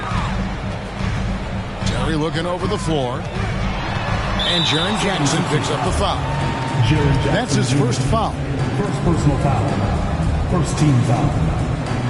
Terry looking over the floor. And Jaren Jackson picks up the foul. That's his first foul. First personal foul. First team foul.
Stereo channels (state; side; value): identical; both; correlation 1.00